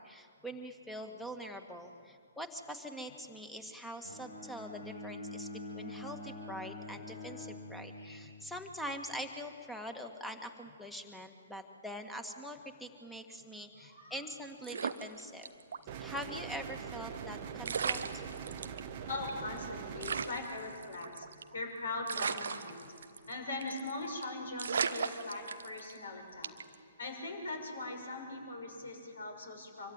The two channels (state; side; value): inverted; both; correlation -0.37